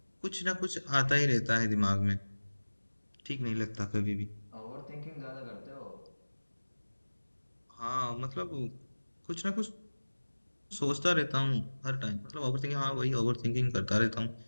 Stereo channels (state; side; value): inverted; both; correlation -1.00